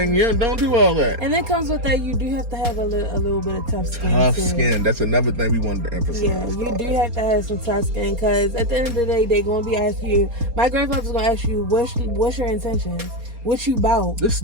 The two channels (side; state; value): left; late; 4.3 ms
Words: Don't do all that. And it comes with that, you do have to have a little bit of tough skin. Tough skin. That's another thing we wanted to emphasize. Yeah, you do have to have some tough skin, because at the end of the day, they're going to be asking you, my grandfather's going to ask you, what's your intentions? What you about? Do